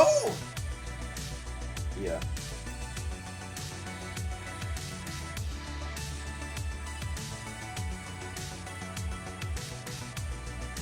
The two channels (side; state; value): both; identical; correlation 1.00